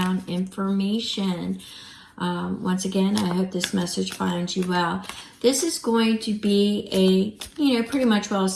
information. Once again, I hope this message finds you well. This is going to be a, pretty much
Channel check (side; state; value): both; identical; correlation 1.00